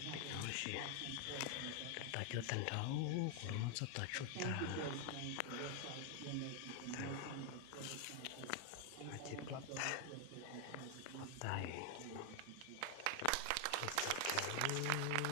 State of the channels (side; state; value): both; different; correlation 0.01